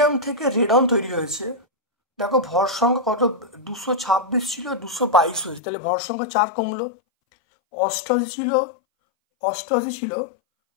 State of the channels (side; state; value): right; drops out; at 5.6 s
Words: থেকে রেডন তৈরি হয়েছে। দেখো ভর সংখ্যা কত? 226 ছিল, 222 হয়েছে, তাহলে ভর সংখ্যা 4 কমলো। 88 ছিল, 86,